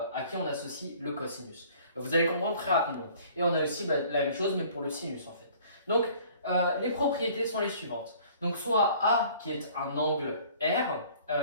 à qui on associe le cosinus. Vous allez comprendre très rapidement. Et on a aussi la même chose, mais pour le sinus en fait. Donc, les propriétés sont les suivantes. Donc, soit A qui est un angle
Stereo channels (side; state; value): both; inverted; correlation -0.53